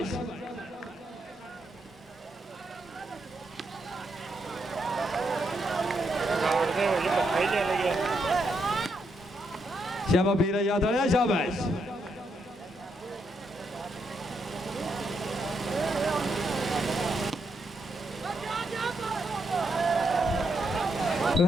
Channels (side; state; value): both; normal; correlation 0.79